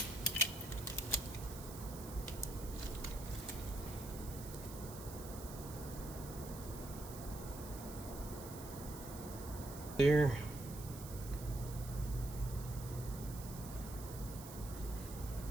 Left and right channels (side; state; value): right; noise; hiss, 12 dB below the sound